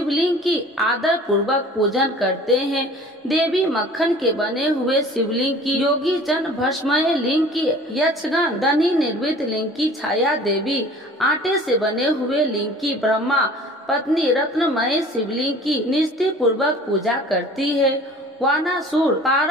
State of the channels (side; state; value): both; normal; correlation 0.46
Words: की आदर पूर्वक पूजन करते हैं। देवी मक्खन के बने हुए शिवलिंग की, योगी जन भस्मय लिंग की, यक्षगण धनी निर्मित लिंग की, छाया देवी आटे से बने हुए लिंग की, ब्रह्मा पत्नी रत्नमय शिवलिंग की निष्ठा पूर्वक पूजा करती है। वानासुर